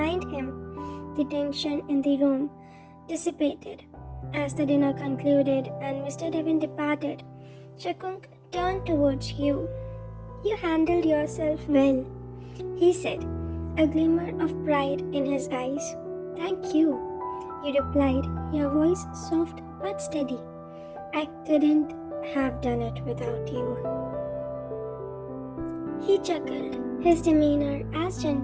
him, the tension in the room dissipated. As the dinner concluded and Mr. Devon departed, Jungkook turned towards you. You handled yourself well, he said, a glimmer of pride in his eyes. Thank you, you replied, your voice soft but steady. I couldn't have done it without you. He chuckled, his demeanor as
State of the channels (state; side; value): identical; both; correlation 1.00